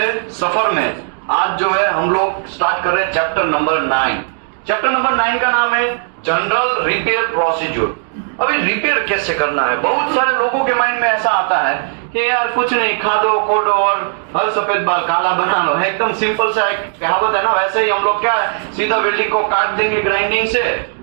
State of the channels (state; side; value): silent; left; digital silence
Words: सफर में आज जो है हम लोग स्टार्ट कर रहे हैं चैप्टर नंबर 9। चैप्टर नंबर 9 का नाम है जनरल रिपेयर प्रोसीजर। अभी रिपेयर कैसे करना है, बहुत सारे लोगों के माइंड में ऐसा आता है कि यार कुछ नहीं, खा दो खोदो और हर सफेद बाल काला बना लो। एकदम सिंपल सा एक कहावत है ना, वैसे ही हम लोग क्या है, सीधा वेल्डिंग को काट देंगे